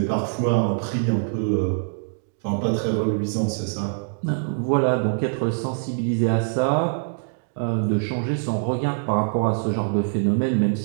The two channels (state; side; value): silent; left; digital silence